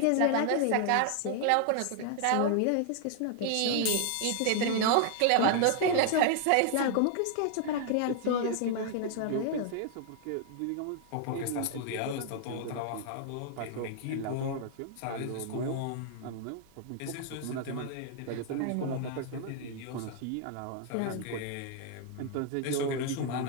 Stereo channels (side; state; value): both; different; correlation 0.00